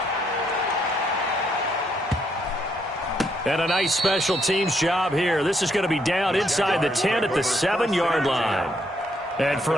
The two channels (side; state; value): both; normal; correlation 0.73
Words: And a nice special teams job here. This is going to be down inside the 10 at the 7-yard line. And for